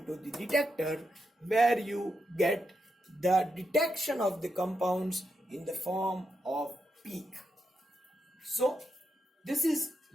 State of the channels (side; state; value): both; normal; correlation 0.84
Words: the detector, where you get the detection of the compounds in the form of peak. So this is